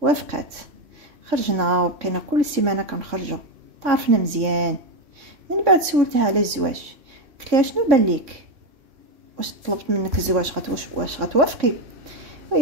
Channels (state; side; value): late; left; 3.6 ms